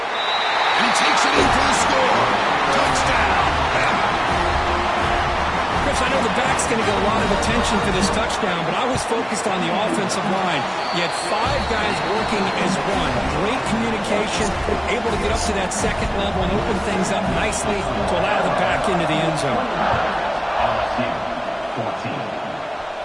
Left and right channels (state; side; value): identical; both; correlation 1.00